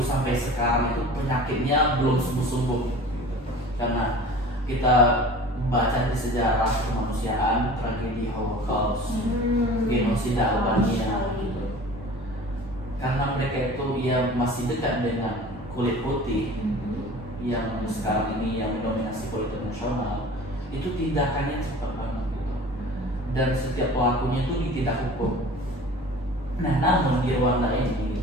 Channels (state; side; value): normal; both; correlation 0.41